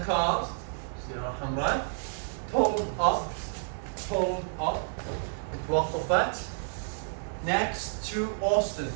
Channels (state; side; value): silent; left; 58 dB below the other